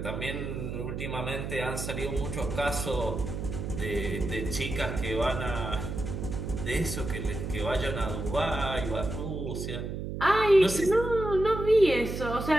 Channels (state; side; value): noise; right; hum, 5 dB below the sound